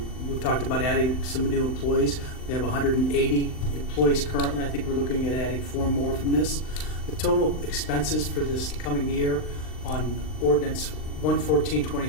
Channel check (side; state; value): right; late; 39 ms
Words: we've talked about adding some new employees. We have 180 employees currently. I think we're looking at adding 4 more from this. The total expenses for this coming year on Ordinance